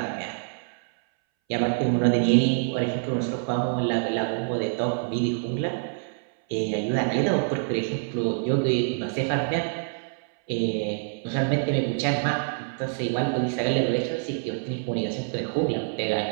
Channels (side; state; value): left; silent; 60 dB below the other